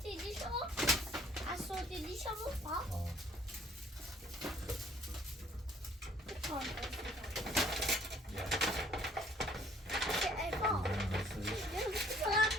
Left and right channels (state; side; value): normal; both; correlation 0.59